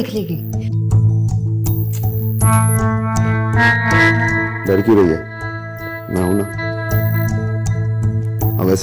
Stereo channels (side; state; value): both; identical; correlation 1.00